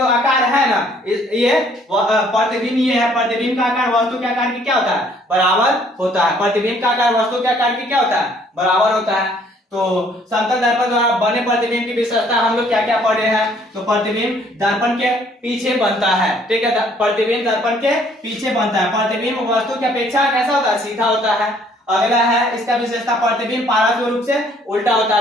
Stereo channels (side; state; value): both; normal; correlation 0.61